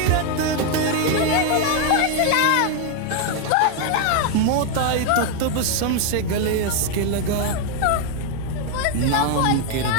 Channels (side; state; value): both; different; correlation 0.01